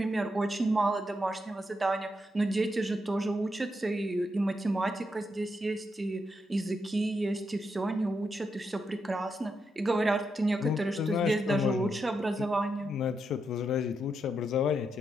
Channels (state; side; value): normal; both; correlation 0.83